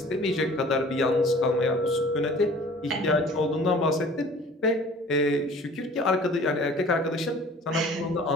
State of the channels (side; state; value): both; normal; correlation 0.48